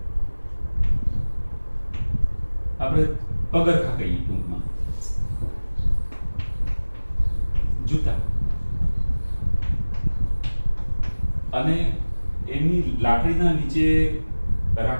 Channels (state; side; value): inverted; both; correlation -1.00